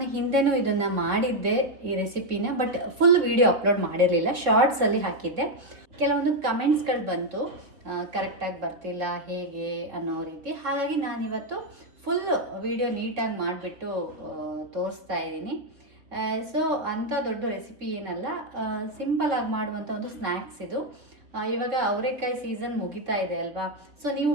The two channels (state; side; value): late; left; 3.6 ms